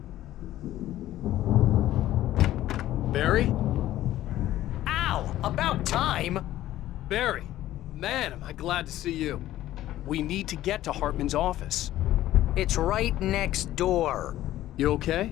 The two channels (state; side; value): quieter; right; 14.1 dB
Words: Barry? Ow! About time! Barry! Man, am I glad to see you. We need to get to Hartman's office. It's right next door. You